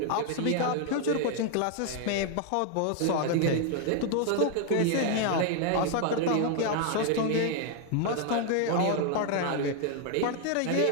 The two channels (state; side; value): different; both; correlation 0.00